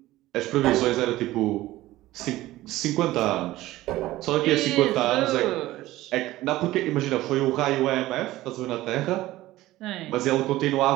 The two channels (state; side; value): quieter; left; 16.6 dB